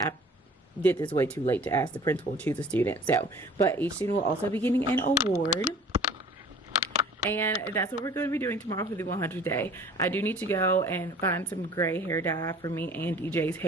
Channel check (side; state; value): both; normal; correlation 0.48